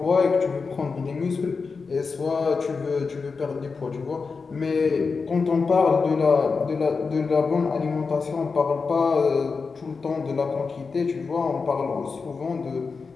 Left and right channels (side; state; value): right; quieter; 4.8 dB